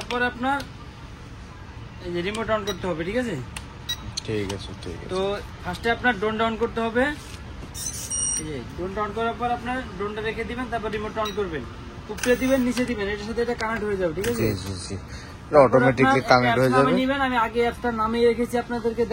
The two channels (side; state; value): both; identical; correlation 1.00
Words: আপনার এই যে রিমোট অন করতে হবে, ঠিক আছে? ঠিক আছে, ঠিক আছে। তো ফার্স্টে আপনার ড্রোন অন করতে হবে। এই যে ড্রোন অন করার পর আপনার ড্রোনটা রেখে দিবেন, তারপর রিমোট অন করবেন, উপরে দিবেন, নিচে দিবেন, এটার সাথে এটা কানেক্ট হয়ে যাবে, ঠিক আছে? জি জি জি, অটোমেটিক্যালি কানেক্ট হয়ে যাবে। আমি আগে অ্যাপটা নামিয়ে রেখেছি আপনাদেরকে